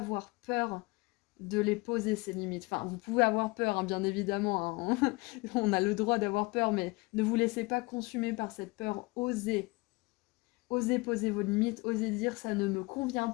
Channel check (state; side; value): quieter; right; 25.1 dB